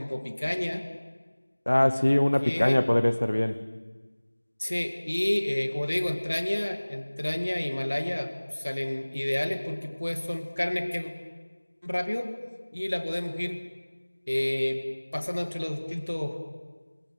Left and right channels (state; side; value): inverted; both; correlation -1.00